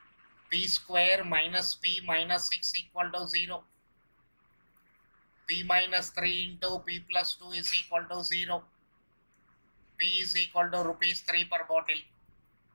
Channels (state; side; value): inverted; both; correlation -1.00